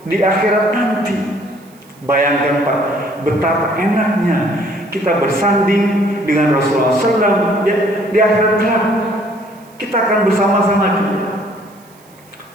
di akhirat nanti. Bayangkan, Pak, betapa enaknya kita bersanding dengan Rasulullah SAW di akhirat kelak. Kita akan bersama-sama dia.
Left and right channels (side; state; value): right; noise; hiss, 29 dB below the sound